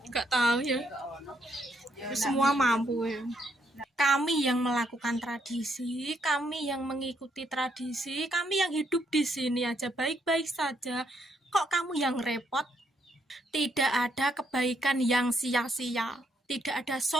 Enggak tahu ya. Semua mampu ya. Kami yang melakukan tradisi, kami yang mengikuti tradisi, kami yang hidup di sini aja baik-baik saja. Kok kamu yang repot? Tidak ada kebaikan yang sia-sia. Tidak ada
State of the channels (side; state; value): both; normal; correlation 0.74